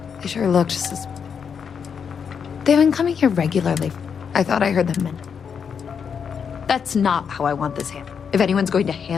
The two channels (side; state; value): right; quieter; 6.8 dB